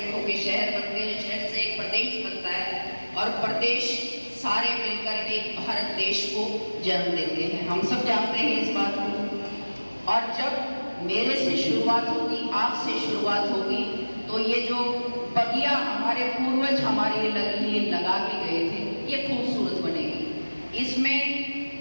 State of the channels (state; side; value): inverted; both; correlation -1.00